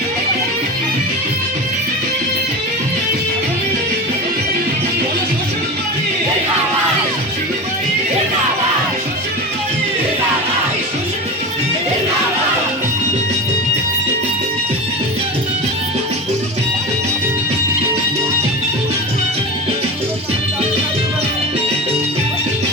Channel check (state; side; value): normal; both; correlation 0.26